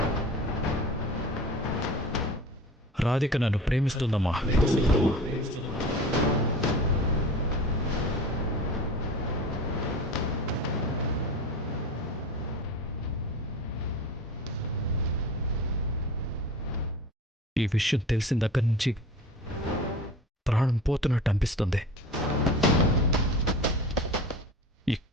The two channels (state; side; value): normal; both; correlation 0.36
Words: రాధిక నన్ను ప్రేమిస్తుందమ్మా. ఈ విషయం తెలిసిన దగ్గర నుంచి ప్రాణం పోతున్నట్టు అనిపిస్తుంది.